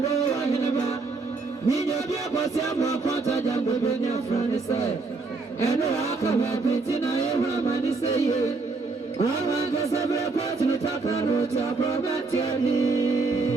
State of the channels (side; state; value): left; quieter; 3.9 dB